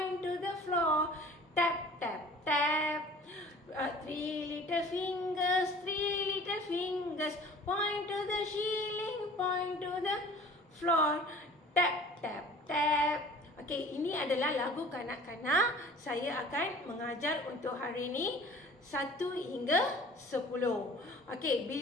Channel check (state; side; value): normal; both; correlation 0.47